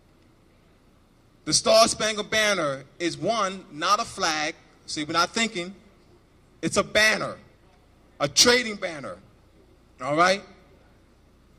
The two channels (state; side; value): identical; both; correlation 1.00